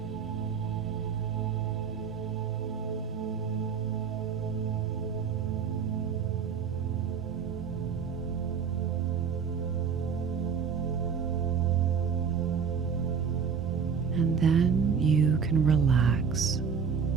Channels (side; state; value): left; quieter; 6.4 dB